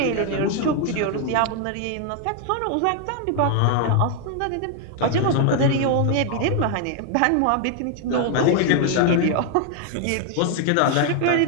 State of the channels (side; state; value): both; different; correlation 0.00